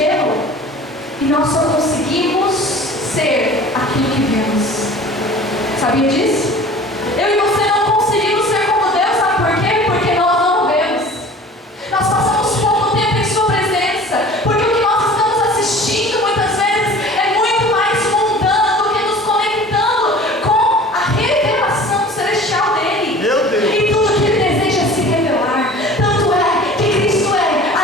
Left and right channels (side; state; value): both; normal; correlation 0.43